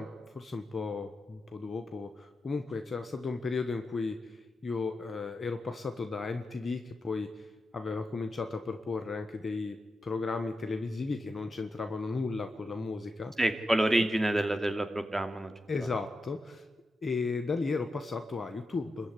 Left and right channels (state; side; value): normal; both; correlation 0.89